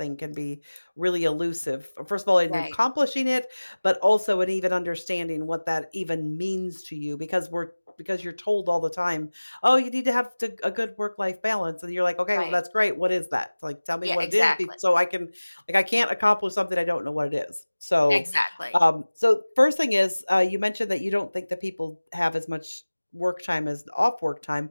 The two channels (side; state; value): both; inverted; correlation -1.00